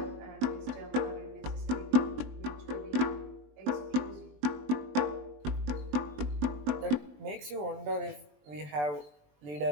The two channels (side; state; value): left; late; 20 ms